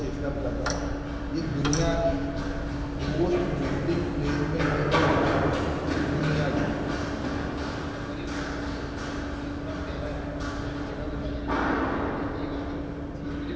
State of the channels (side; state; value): both; identical; correlation 1.00